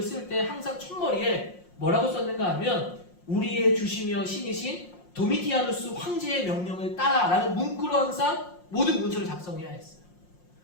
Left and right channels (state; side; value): late; right; 5.6 ms